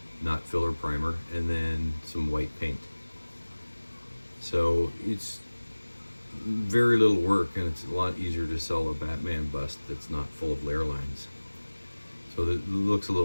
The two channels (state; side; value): inverted; both; correlation -1.00